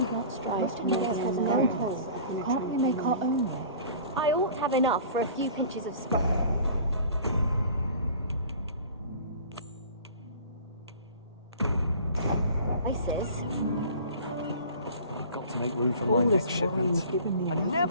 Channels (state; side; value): inverted; both; correlation -0.44